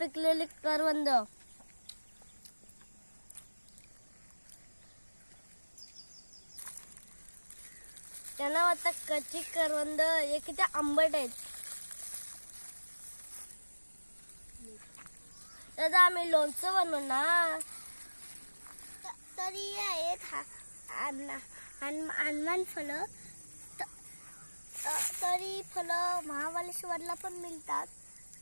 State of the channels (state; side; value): inverted; both; correlation -1.00